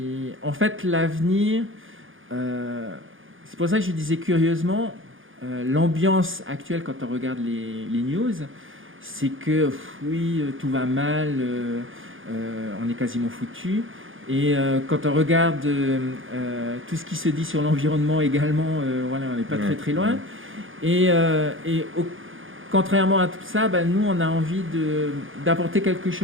En fait, l'avenir, c'est pour ça que je disais curieusement, l'ambiance actuelle quand on regarde les news, c'est que oui, tout va mal, on est quasiment foutu. Et quand on regarde tout ce qui se dit sur l'environnement également, voilà, on n'est pas très très loin. Et contrairement à tout ça, nous, on a envie d'apporter quelque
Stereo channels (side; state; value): left; late; 0.58 ms